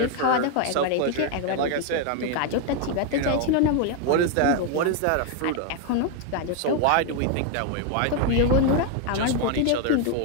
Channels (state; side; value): different; both; correlation 0.01